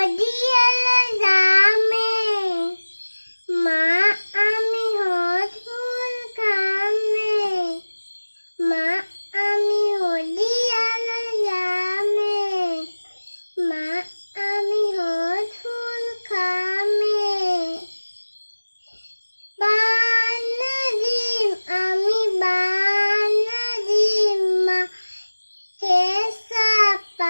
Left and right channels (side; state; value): both; inverted; correlation -1.00